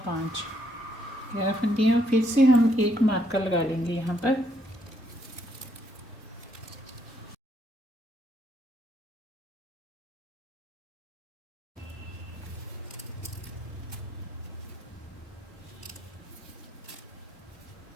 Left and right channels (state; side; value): normal; both; correlation 0.73